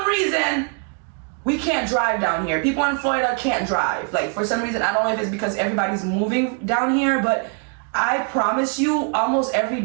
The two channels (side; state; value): left; quieter; 39.8 dB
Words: reason, we can't drive down here. People in Florida can't drive. Like, for some reason, I don't know if it's because everybody's moving down here, but I promise you, almost every